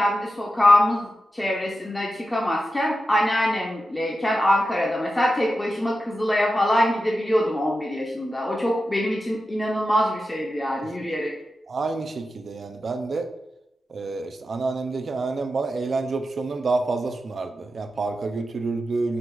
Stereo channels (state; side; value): normal; both; correlation 0.91